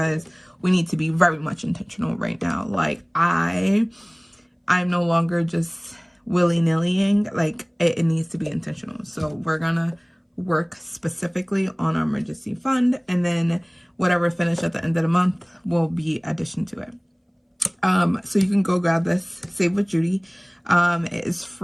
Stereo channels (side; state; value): both; identical; correlation 1.00